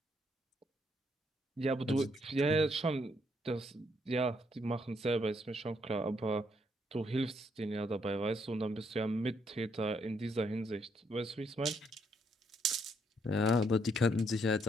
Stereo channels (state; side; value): normal; both; correlation 0.73